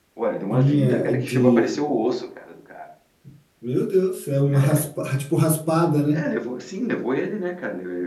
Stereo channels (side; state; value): both; identical; correlation 1.00